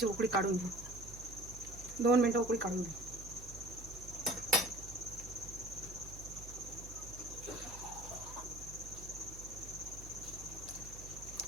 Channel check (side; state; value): right; noise; hum, 13 dB below the sound